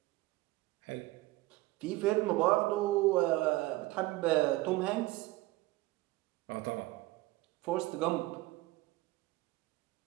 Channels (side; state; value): left; quieter; 19.4 dB